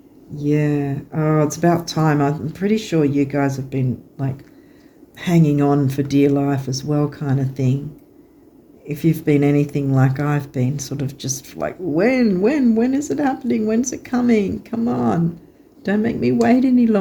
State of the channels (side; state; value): both; identical; correlation 1.00